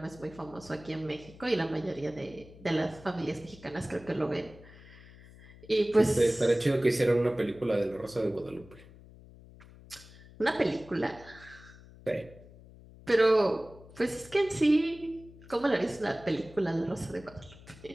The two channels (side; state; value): left; noise; hum, 21 dB below the sound